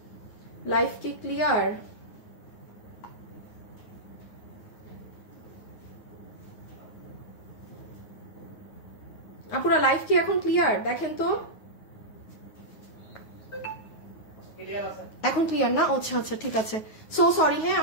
লাইভ কি ক্লিয়ার? আপুরা লাইভ কি এখন ক্লিয়ার? দেখেন তো এখন ক্লিয়ার না? আচ্ছা আচ্ছা ঠিক আছে, সো সরি। হ্যাঁ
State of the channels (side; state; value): right; late; 9.5 ms